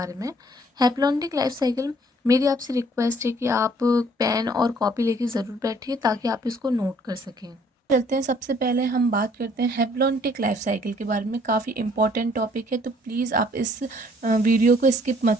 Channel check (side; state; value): both; normal; correlation 0.61